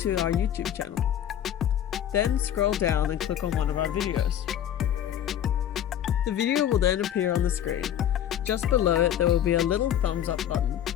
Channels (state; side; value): quieter; right; 10.6 dB